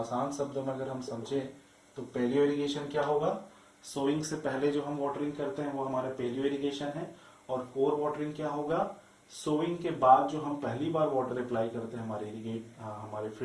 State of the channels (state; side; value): identical; both; correlation 1.00